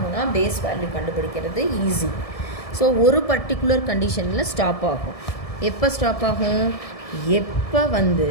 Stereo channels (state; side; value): late; right; 1.7 ms